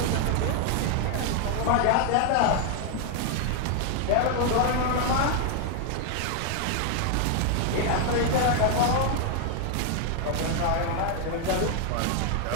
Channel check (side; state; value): both; different; correlation 0.00